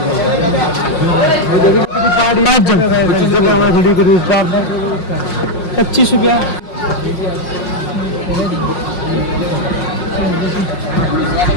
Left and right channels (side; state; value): right; late; 5.5 ms